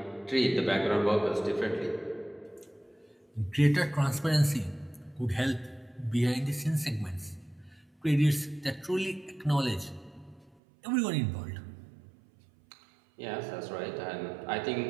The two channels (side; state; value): left; drops out; at 10.6 s